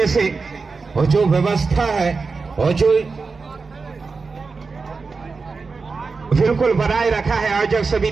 से। और जो व्यवस्था है और जो बिल्कुल बनाए रखा है आयोजक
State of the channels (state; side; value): quieter; left; 4.5 dB